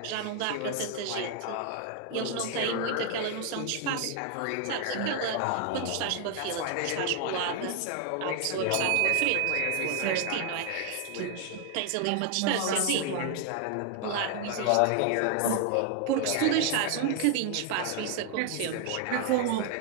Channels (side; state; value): both; different; correlation 0.00